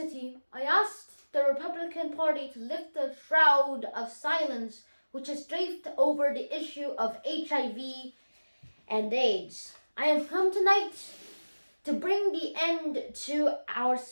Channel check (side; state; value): both; inverted; correlation -1.00